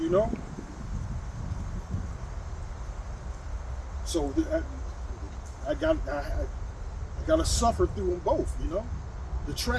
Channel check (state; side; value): identical; both; correlation 1.00